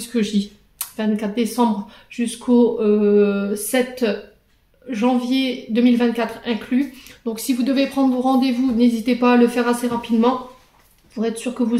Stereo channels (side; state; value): both; identical; correlation 1.00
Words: que je dis, 24 décembre jusqu'au 7 janvier 2024 inclus. Donc si vous devez prendre vos rendez-vous, n'hésitez pas à le faire assez rapidement pour être sûr que